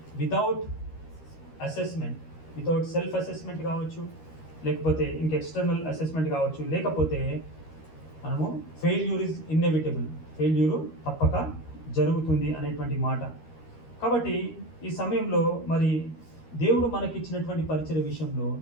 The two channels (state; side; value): late; right; 13 ms